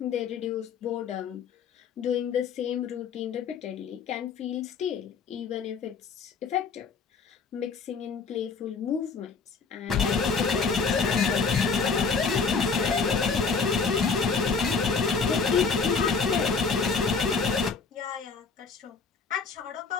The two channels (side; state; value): right; quieter; 5.2 dB